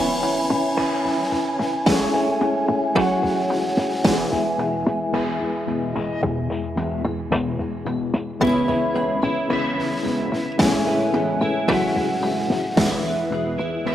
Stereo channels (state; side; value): normal; both; correlation 0.86